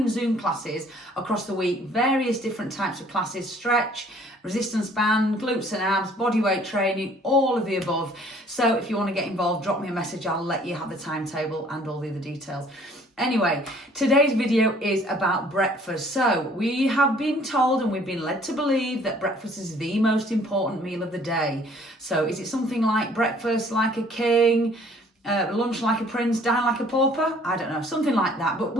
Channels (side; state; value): both; normal; correlation 0.57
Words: Zoom classes across the week, various different types of classes: stretch, resistance band, glutes and abs, body weight training, all of the above. So if you want to get involved, drop me a message. I'll let you have the timetable and all the other details. Anyway, today's video is about breakfast. So we have been told and we've been led to believe that breakfast is the most important meal of the day. So is it something like breakfast like a king, lunch like a prince, dine like a pauper? I don't know, something like that. But